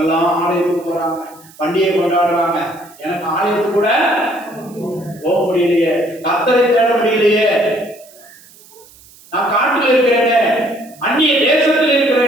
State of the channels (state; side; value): noise; right; hiss, 24 dB below the sound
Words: எல்லாம் ஆலயத்துக்கு போறாங்க, பண்டிகை கொண்டாடுறாங்க, எனக்கு ஆலயத்துக்கு கூட போக முடியலையே, கர்த்தரை தேட முடியலையே, நான் காட்டில் இருக்கிறேனே, அந்நிய தேசத்தில்